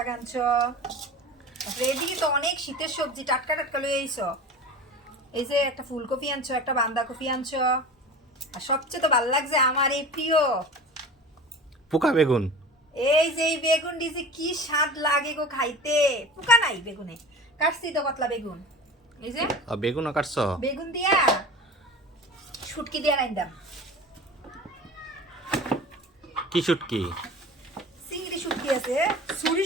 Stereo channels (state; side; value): normal; both; correlation 0.36